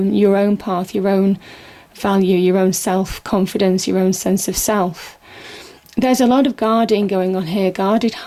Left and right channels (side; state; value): both; identical; correlation 1.00